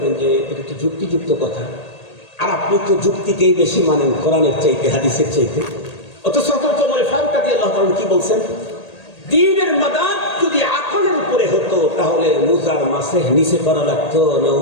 যে এটা তো যুক্তিযুক্ত কথা, আর আপনি তো যুক্তিকেই বেশি মানেন কোরআনের চাইতে, হাদিসের চাইতে। অথচ হযরত ওমর ফারুক রাদিয়াল্লাহু তাআলা কি বলছেন? দ্বীনের মাদার যদি আকলের উপরে হতো, তাহলে মুজার মাসে নিচে করা লাগতো না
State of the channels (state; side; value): late; right; 1.8 ms